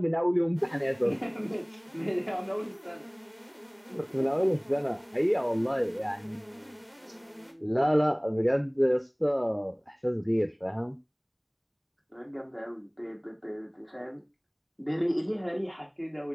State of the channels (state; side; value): identical; both; correlation 1.00